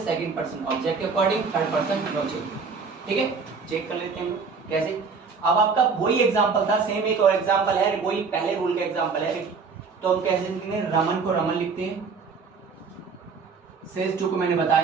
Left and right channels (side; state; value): left; quieter; 5.1 dB